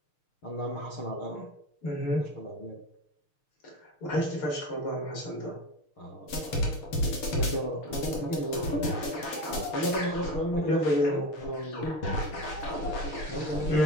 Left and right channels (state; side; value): late; right; 6.6 ms